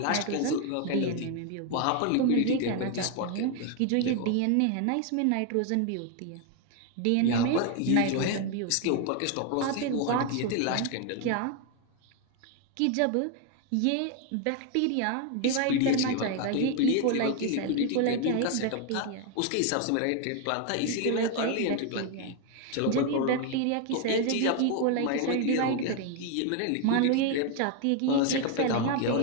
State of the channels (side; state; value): both; different; correlation 0.01